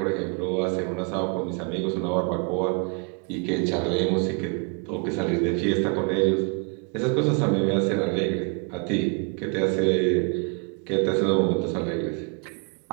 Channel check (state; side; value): quieter; left; 35.3 dB